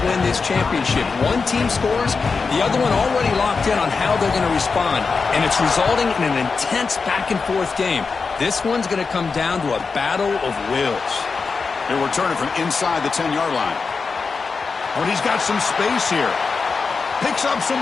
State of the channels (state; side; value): quieter; right; 4.8 dB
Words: win this championship. One team scores, the other one already locked in on how they're going to respond. And it's resulting in an intense back-and-forth game. This one's going to come down to a battle of wills. They're returning from inside the 10-yard line. But he's got some space here. Picks up some